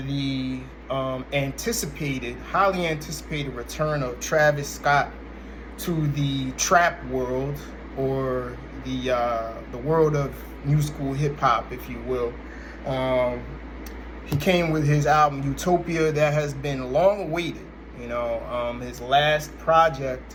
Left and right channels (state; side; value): identical; both; correlation 1.00